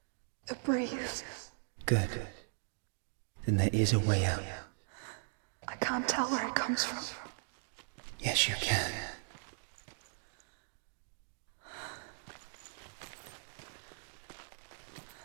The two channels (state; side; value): silent; left; digital silence